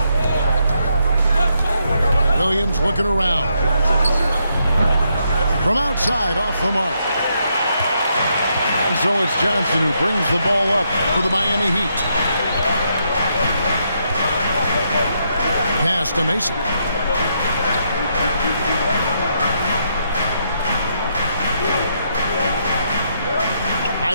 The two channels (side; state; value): both; inverted; correlation -0.77